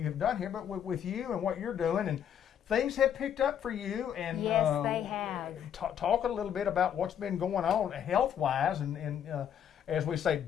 have done here, but with you and what you're doing, and things have picked up for you. And yes, they have. Talk a little bit about what's been going on health-wise, and as we say,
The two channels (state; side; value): quieter; right; 9.1 dB